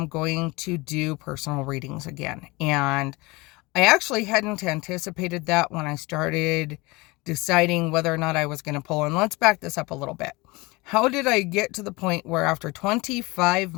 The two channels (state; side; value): quieter; right; 23.8 dB